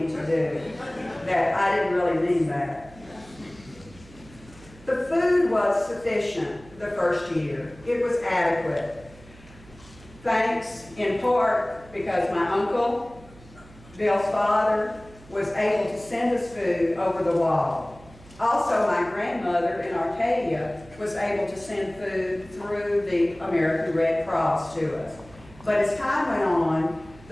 to do that I didn't really mean that. The food was sufficient the first year. It was adequate. Thanks in part because my uncle, Bill's father, was able to send us food over the wall. Also, my grandmother in Arcadia was able to send food through the American Red Cross to us. But as time went on,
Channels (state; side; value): noise; right; hum, 22 dB below the sound